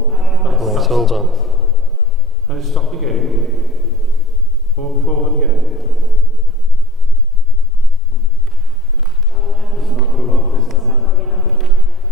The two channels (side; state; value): both; normal; correlation 0.46